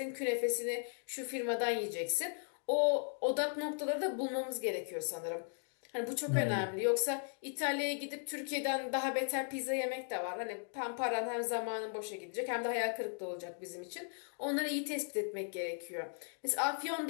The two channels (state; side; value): silent; right; 53 dB below the other